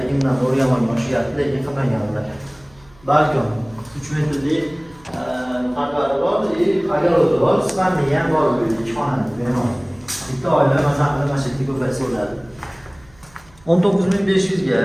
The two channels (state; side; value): noise; right; hum, 28 dB below the sound